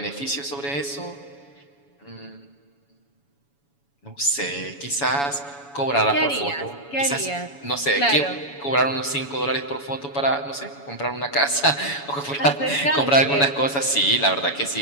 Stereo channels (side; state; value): right; late; 7.1 ms